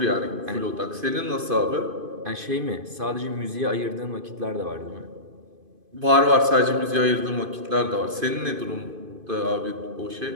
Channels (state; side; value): late; left; 2.5 ms